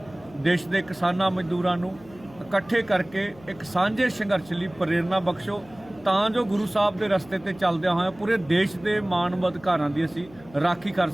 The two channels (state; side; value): noise; left; hum, 23 dB below the sound